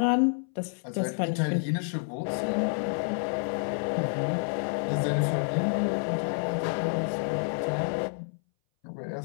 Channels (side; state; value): right; silent; 59 dB below the other